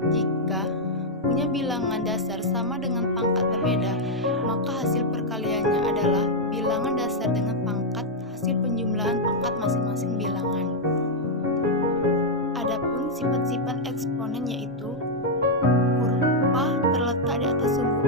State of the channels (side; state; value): both; normal; correlation -0.03